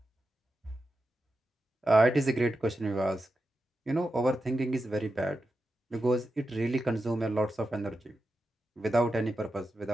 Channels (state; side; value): normal; both; correlation 0.89